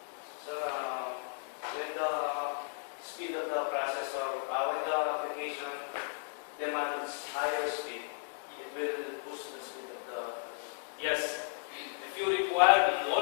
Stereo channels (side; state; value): right; silent; digital silence